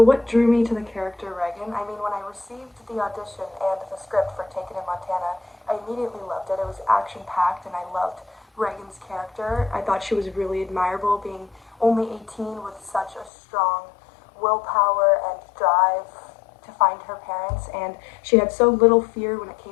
drew me to the character Reagan? I mean, when I received the audition and the script for Taken in Montana, I immediately loved it. It was action-packed and I loved Reagan's character. I thought she was really admirable, being only 18 with such a strong willpower and drive to find her parents, and she had so little fear when it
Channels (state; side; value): drops out; right; at 13.3 s